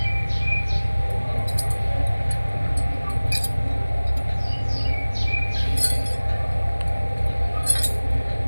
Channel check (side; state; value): both; inverted; correlation -1.00